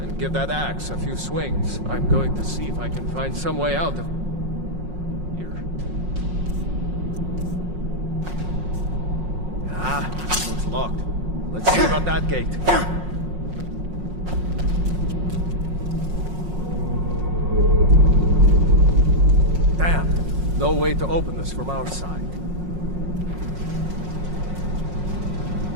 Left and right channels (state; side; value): late; left; 5.5 ms